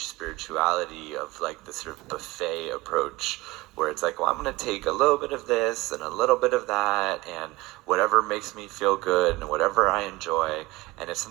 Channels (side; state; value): left; quieter; 20.9 dB